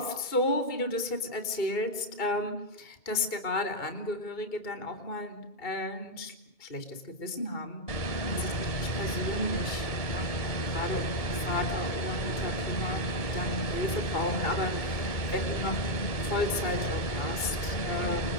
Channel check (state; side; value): late; right; 2.2 ms